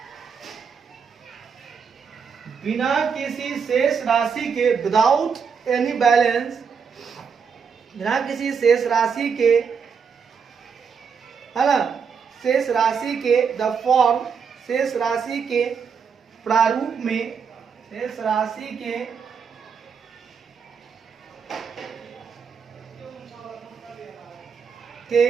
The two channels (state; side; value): quieter; left; 6.3 dB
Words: शेष राशि के, विदाउट एनी बैलेंस, बिना किसी शेष राशि के, है ना, शेष राशि के, द फॉर्म, शेष राशि के प्रारूप में, शेष राशि के